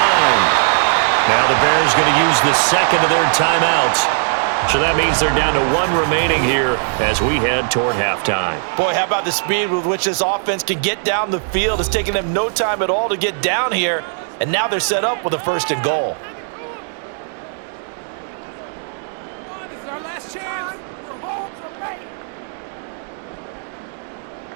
Now the Bears going to use the second of their timeouts. So that means they're down to one remaining here as we head toward halftime. Boy, how about the speed with which this offense can get down the field? It's taken them no time at all to get down here, and now they're set up with a first and goal. This is our last chance. We're home to make.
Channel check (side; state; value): left; silent; digital silence